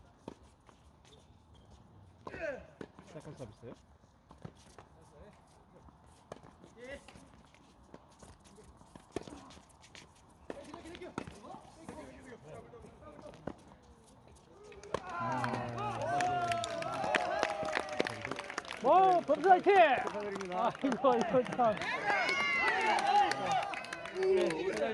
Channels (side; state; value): both; identical; correlation 1.00